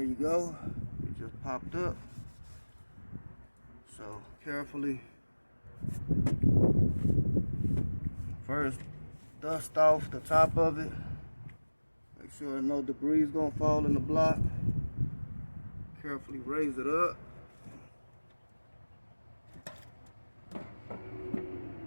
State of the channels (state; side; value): inverted; both; correlation -1.00